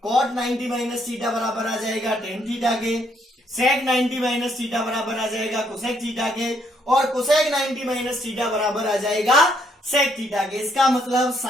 cot 90 माइनस थीटा बराबर आ जाएगा tan थीटा के, sec 90 माइनस थीटा बराबर आ जाएगा cosec थीटा के, और cosec 90 माइनस थीटा बराबर आ जाएगा sec थीटा के। इसका मतलब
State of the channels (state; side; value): normal; both; correlation 0.70